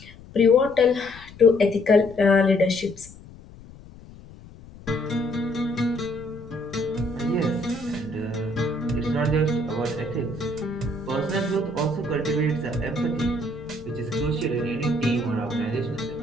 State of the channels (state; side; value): noise; left; rumble, 19 dB below the sound